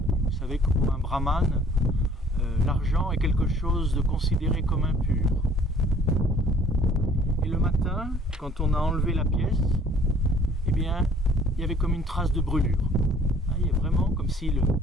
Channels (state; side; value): normal; both; correlation 0.56